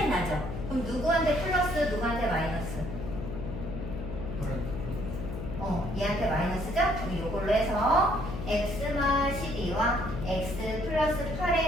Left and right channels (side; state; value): left; noise; hum, 7 dB below the sound